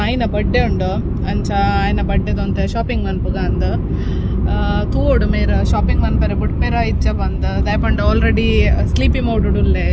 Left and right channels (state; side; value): identical; both; correlation 1.00